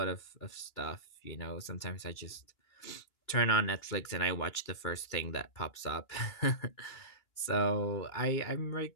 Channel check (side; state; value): right; late; 2.9 ms